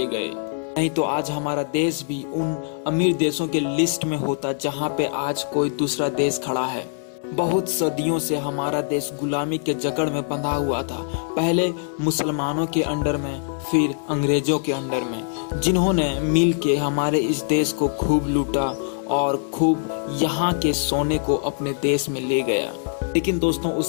गए, नहीं तो आज हमारा देश भी उन अमीर देशों के लिस्ट में होता जहां पे आज कोई दूसरा देश खड़ा है। बहुत सदियों से हमारा देश गुलामी के जकड़ में बंधा हुआ था, पहले मुसलमानों के अंडर में, फिर अंग्रेजों के अंडर में, जिन्होंने मिल के हमारे इस देश को खूब लूटा और खूब यहाँ के सोने को अपने देश में ले गया। लेकिन दोस्तों,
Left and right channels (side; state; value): right; silent; 63 dB below the other